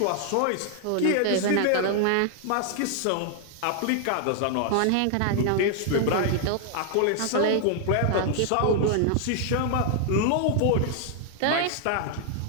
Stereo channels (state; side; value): different; both; correlation 0.00